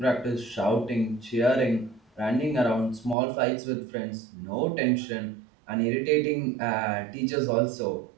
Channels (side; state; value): left; drops out; at 3.2 s